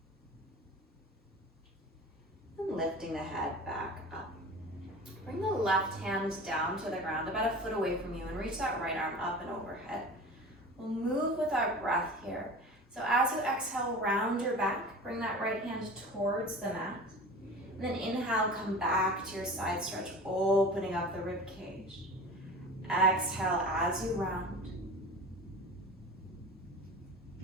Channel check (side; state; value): both; normal; correlation 0.36